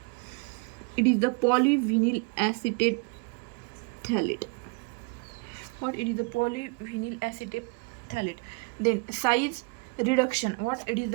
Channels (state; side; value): quieter; left; 30.9 dB